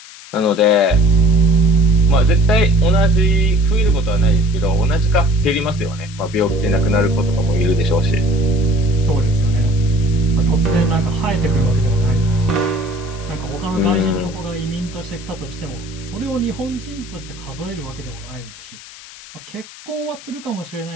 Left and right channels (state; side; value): noise; left; hiss, 18 dB below the sound